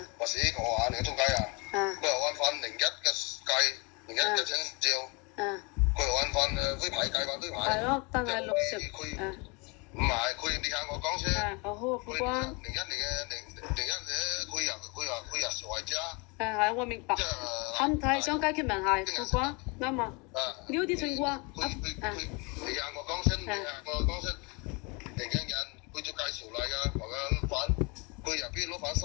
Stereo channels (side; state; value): right; quieter; 29.6 dB